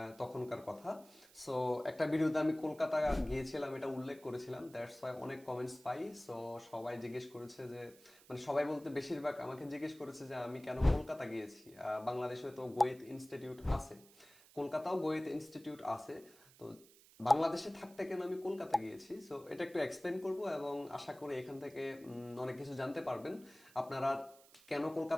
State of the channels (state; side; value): noise; right; hiss, 24 dB below the sound